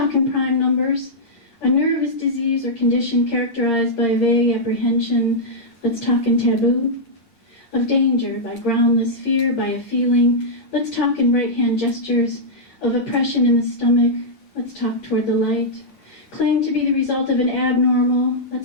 in prime numbers. A nervous disease or condition characterized by vague apprehension. Let's talk in taboo. Of danger, by groundless fear, by a feeling. Let's talk in right-hand gestures. Of oppression in the stomach. Let's talk toward the light. Claim to be the result of an abnormal.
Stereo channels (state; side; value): late; right; 8.6 ms